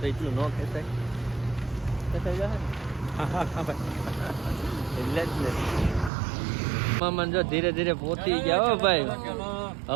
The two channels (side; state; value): left; drops out; at 6.1 s